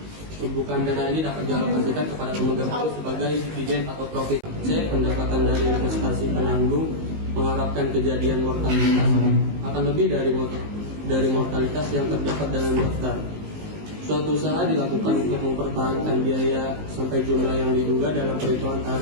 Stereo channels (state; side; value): late; left; 19 ms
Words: Tumpukan dana ini dapat dialokasikan kepada pemegang polis sebagai dividen atau profit. C. Pendapatan dari investasi penanggung mengharapkan kejadian mortalitas akan lebih dari mortalitas yang terdapat dalam daftar. Suatu usaha dilakukan untuk mempertahankan biaya sampai jumlah yang diduga dalam perhitungan